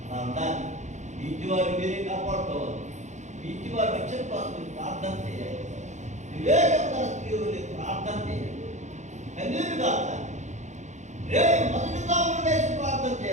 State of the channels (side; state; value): left; late; 0.34 ms